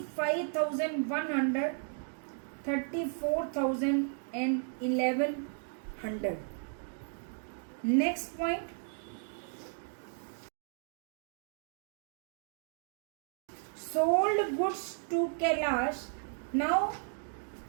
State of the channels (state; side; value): silent; left; 55 dB below the other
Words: 34,000 and 1,100. Next point, sold goods to Kailash. Now